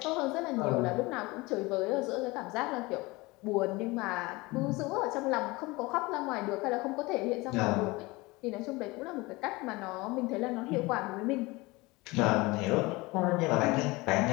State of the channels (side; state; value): right; quieter; 22.8 dB